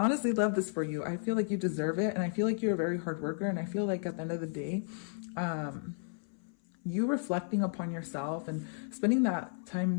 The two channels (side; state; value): right; silent; 56 dB below the other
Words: honestly love this for you. I feel like you deserve it, and I feel like you're a very hard worker, and I feel like at the end of the day, you reflecting upon yourself and spending that time